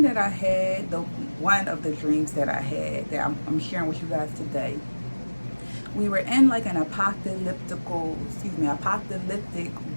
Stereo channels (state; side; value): inverted; both; correlation -1.00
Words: that I had, one of the dreams that I had that I'm sharing with you guys today, we were in like an apocalyptic